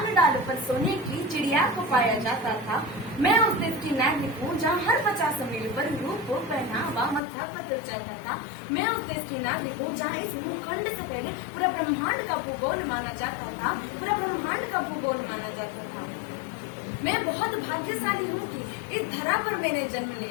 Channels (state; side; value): drops out; right; at 7.2 s